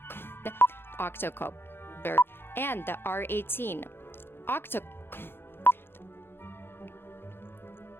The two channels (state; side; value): late; right; 0.11 ms